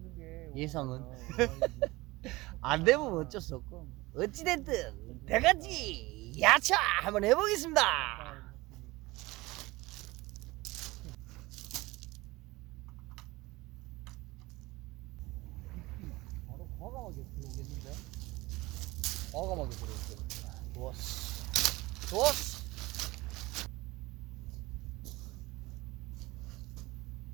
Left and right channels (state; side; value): quieter; left; 21.0 dB